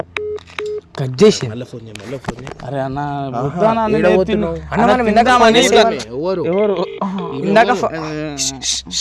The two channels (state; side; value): identical; both; correlation 1.00